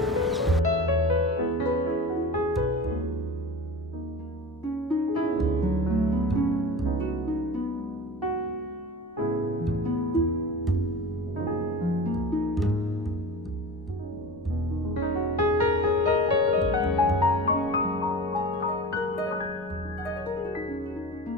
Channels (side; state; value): both; normal; correlation 0.35